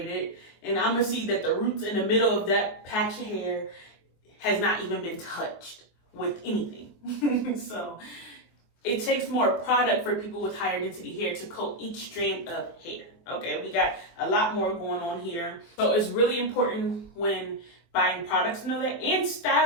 it, and I'm gonna see that the roots in the middle of that patch of hair has not even been touched with anything. So it takes more product for people with higher density hair to coat each strand of hair. Okay, we got a lot more going on here. So it's really important when buying products to know that, and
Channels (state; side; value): late; right; 24 ms